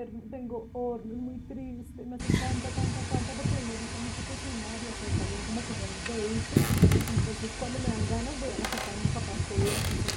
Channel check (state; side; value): identical; both; correlation 1.00